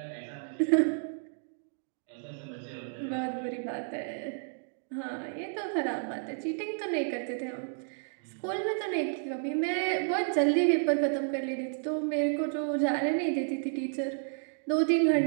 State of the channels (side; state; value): left; silent; digital silence